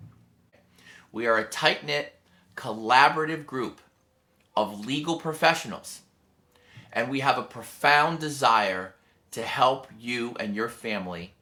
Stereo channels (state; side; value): identical; both; correlation 1.00